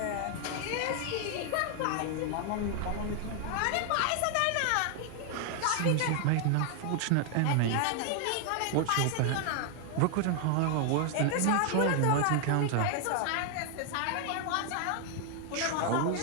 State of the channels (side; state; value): both; different; correlation 0.00